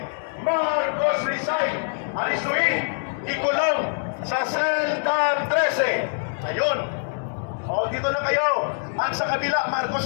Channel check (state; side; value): silent; right; digital silence